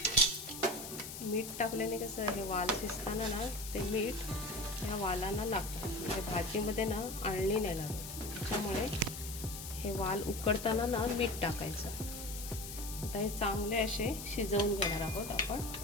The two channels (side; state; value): left; noise; hiss, 9 dB below the sound